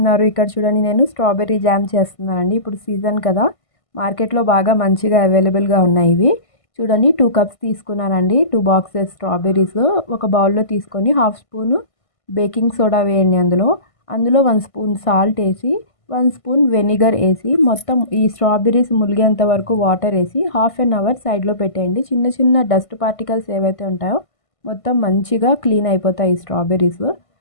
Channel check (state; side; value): late; right; 1.5 ms